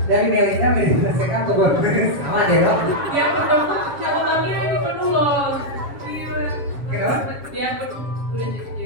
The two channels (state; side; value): late; left; 7.3 ms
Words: Dari Melinda menyelesaikan atau bonus sama ya dok. Ya betul, catatannya ini penuh loh. Kenapa? Dia udah